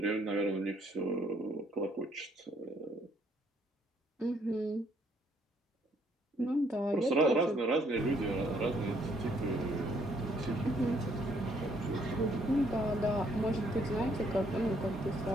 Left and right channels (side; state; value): both; normal; correlation 0.67